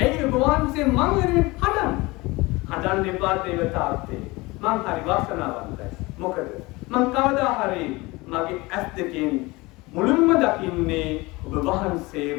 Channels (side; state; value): right; quieter; 22.7 dB